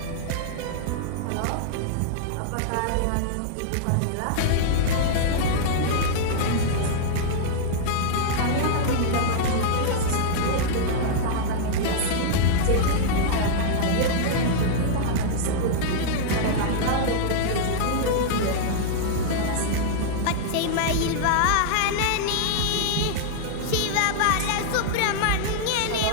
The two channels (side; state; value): both; different; correlation -0.01